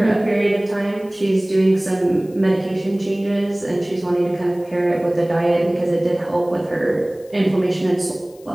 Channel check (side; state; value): left; noise; hiss, 28 dB below the sound